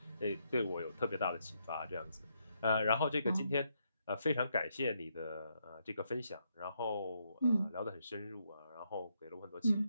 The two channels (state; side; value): inverted; both; correlation -0.77